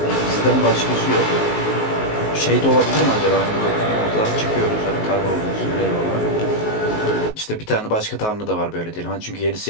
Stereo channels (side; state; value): right; late; 19 ms